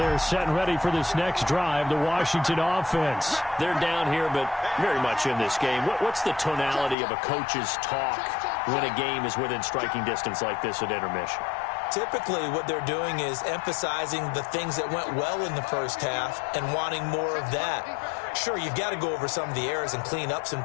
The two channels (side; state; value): right; drops out; at 7.0 s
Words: set and ready for this next drive, the Washington offense. They're down here, but very much in this game. What's the tonality of a coach's talk when a game is within striking distance like this at intermission? Typically, what they're doing is emphasizing the things that went well in the first half and wanting more of that. Sure, you've got to go over some of the errors and clean up some